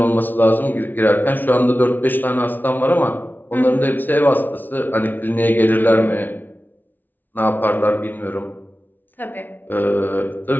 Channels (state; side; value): late; right; 0.087 ms